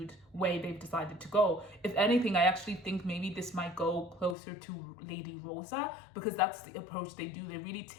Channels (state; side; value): drops out; right; at 4.4 s